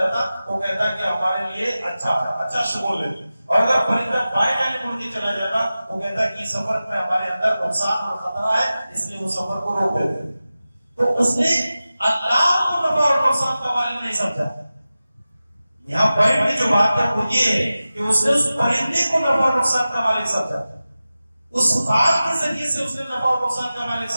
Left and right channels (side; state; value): both; inverted; correlation -0.95